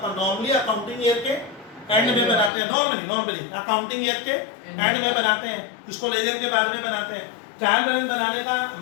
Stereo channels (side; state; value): right; drops out; at 2.5 s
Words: नॉर्मली अकाउंटिंग ईयर के एंड में बनाते हैं, नॉर्मली अकाउंटिंग ईयर के एंड में बनाते हैं, इसको लेजर के बाद में बनाते हैं। ट्रायल बैलेंस बनाने का